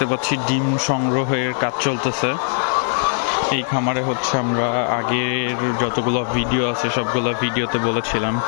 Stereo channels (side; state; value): right; silent; digital silence